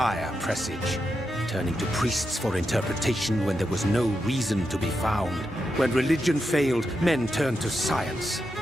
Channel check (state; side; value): normal; both; correlation 0.86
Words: presage. Turning to priests for interpretation when there was no reason to be found. When religion failed, men turned to science.